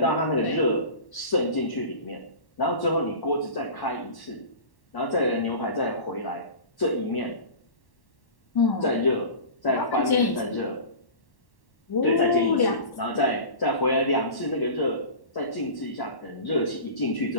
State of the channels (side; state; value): right; late; 1.1 ms